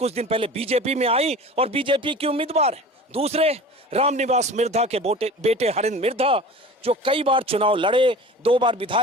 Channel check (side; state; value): both; normal; correlation 0.38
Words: दिन पहले बीजेपी में आई और बीजेपी की उम्मीदवार है। दूसरे रामनिवास मिर्धा के बेटे हरिंद्र मिर्धा, जो कई बार चुनाव लड़े, 2 बार